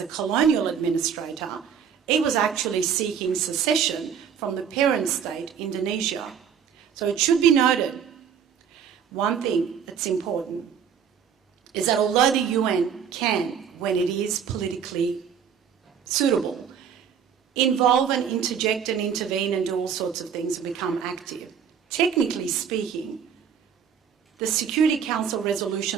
a colonial administrator, it was actually seeking secession from the parent state, Indonesia. So it should be noted, one thing that's important is that although the UN can, when it is politically suitable, involve and interject and intervene and do all sorts of things and become active, technically speaking, the Security Council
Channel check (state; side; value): quieter; left; 7.6 dB